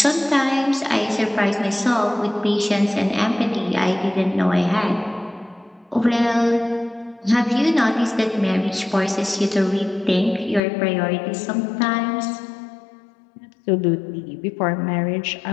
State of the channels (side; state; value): right; drops out; at 10.6 s